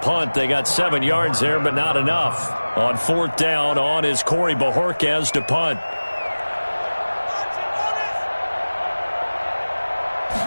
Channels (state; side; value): inverted; both; correlation -1.00